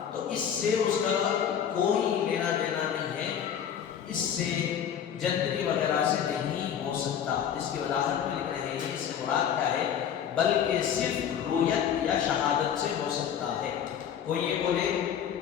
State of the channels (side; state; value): right; quieter; 8.7 dB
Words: تو اس سے اس کا کوئی لینا دینا نہیں ہے، اس سے جنتری وغیرہ سے نہیں ہو سکتا۔ اس کی وضاحت میں لکھ رہے ہیں، اس سے مراد کیا ہے؟ بلکہ صرف رویت یا شہادت سے ہو سکتا ہے۔ کوئی یہ بولے